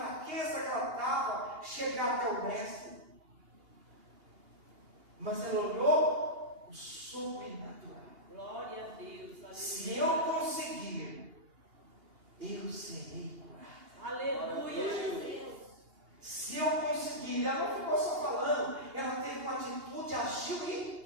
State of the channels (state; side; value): late; left; 2.8 ms